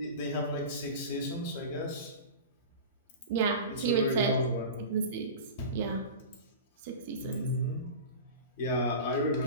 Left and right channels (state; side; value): inverted; both; correlation -0.31